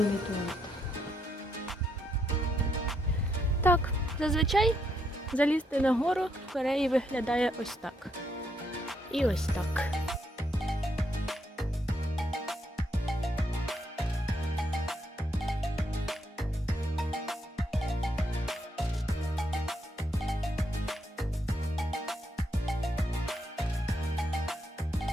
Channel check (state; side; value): normal; both; correlation 0.77